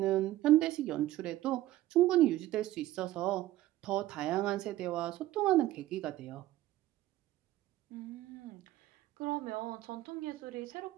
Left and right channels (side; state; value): left; quieter; 15.3 dB